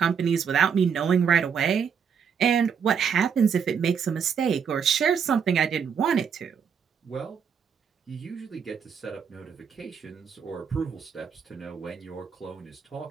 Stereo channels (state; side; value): quieter; left; 7.0 dB